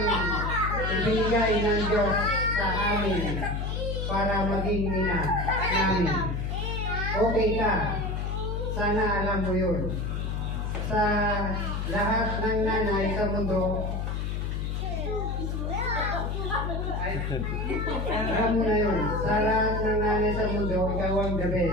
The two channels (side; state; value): left; noise; hum, 2 dB below the sound